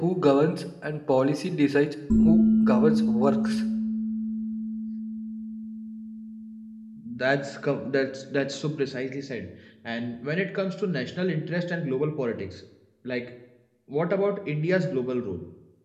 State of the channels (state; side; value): identical; both; correlation 1.00